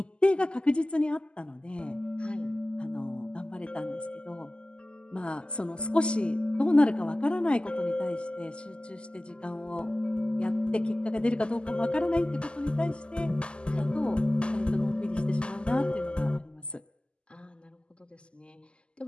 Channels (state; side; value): late; right; 0.051 ms